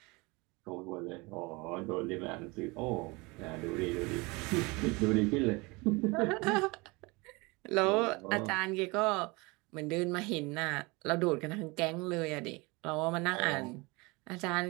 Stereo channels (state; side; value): quieter; left; 25.7 dB